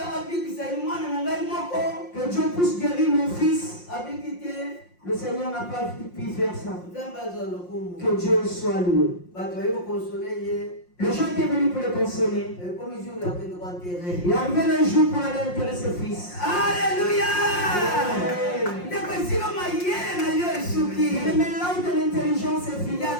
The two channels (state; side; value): late; right; 5.6 ms